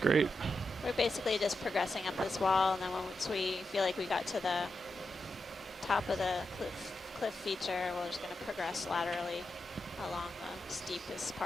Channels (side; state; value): both; normal; correlation 0.88